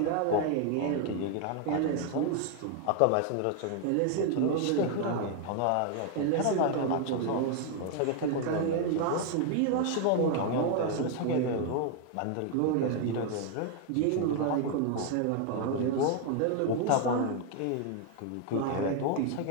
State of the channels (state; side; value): different; both; correlation 0.00